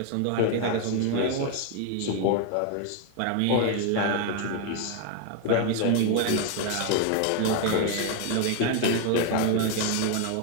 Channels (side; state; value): both; different; correlation 0.01